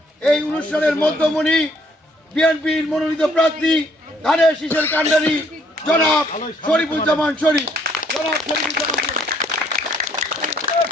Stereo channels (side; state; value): both; normal; correlation 0.65